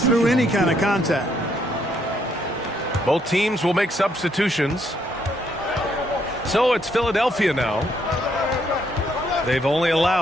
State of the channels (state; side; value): normal; both; correlation 0.72